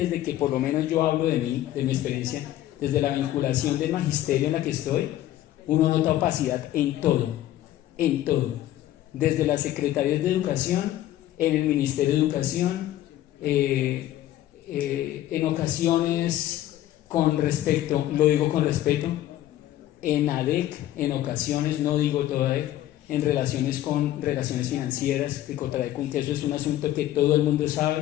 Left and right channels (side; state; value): right; quieter; 13.5 dB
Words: que por lo menos yo hablo de mí, de mi experiencia, desde la vinculación del magisterio en la que estoy, uno nota opacidad en todo, desde las secretarías de educación, en el Ministerio de Educación, en ocasiones con respecto, lo digo con respeto, en ADEC, en ocasiones, no digo toda ADEC, en relaciones financieras, de Cotradecum, que eso es un asunto que todo el mundo